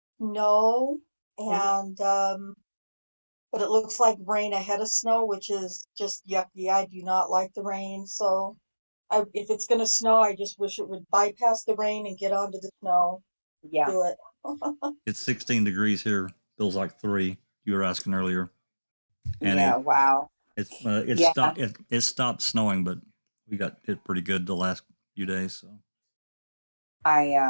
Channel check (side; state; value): both; inverted; correlation -1.00